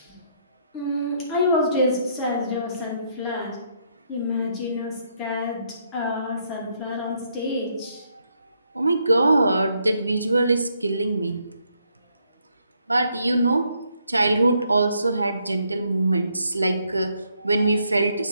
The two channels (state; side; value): inverted; both; correlation -0.73